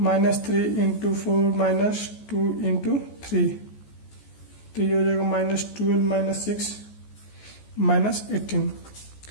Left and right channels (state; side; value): late; right; 14 ms